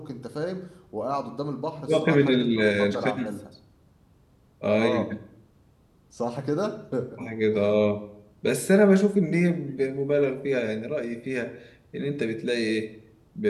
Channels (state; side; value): identical; both; correlation 1.00